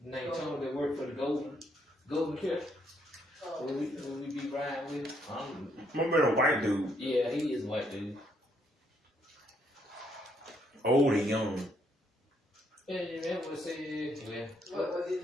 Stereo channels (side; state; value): both; normal; correlation 0.72